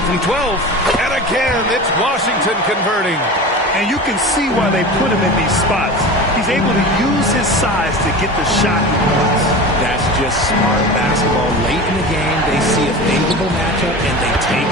from 12. And again, it's Washington converting. And you can see why they put him in these spots. He's able to use his size to get the shot he wants. That's just smart basketball. Late in the game, they see a favorable matchup, and they take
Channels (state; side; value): normal; both; correlation 0.32